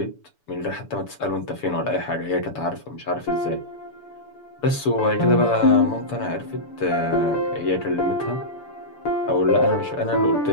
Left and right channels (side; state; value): right; late; 6.9 ms